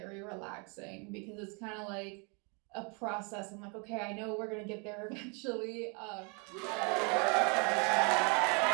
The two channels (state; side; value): quieter; left; 34.2 dB